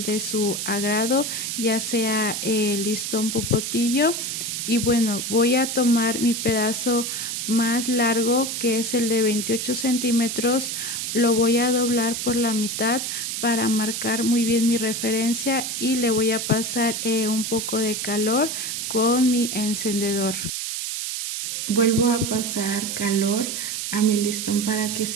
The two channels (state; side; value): noise; right; hiss, 3 dB below the sound